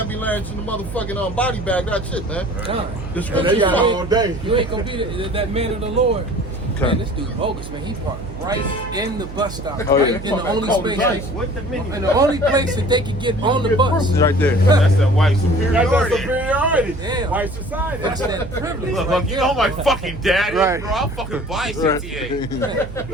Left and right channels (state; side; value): noise; right; hum, 11 dB below the sound